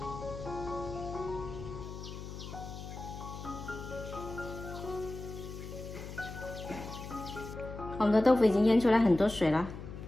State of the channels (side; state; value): left; noise; hum, 10 dB below the sound